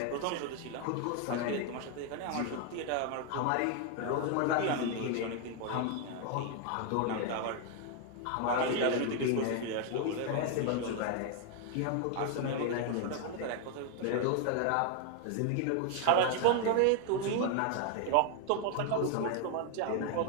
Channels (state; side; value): different; both; correlation 0.00